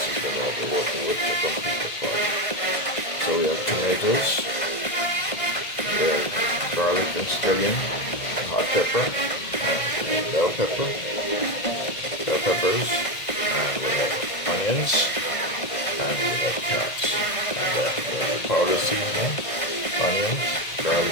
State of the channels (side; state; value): right; late; 2.0 ms